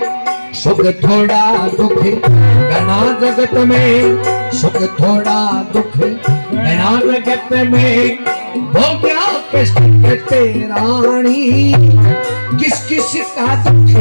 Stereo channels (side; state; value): both; inverted; correlation -1.00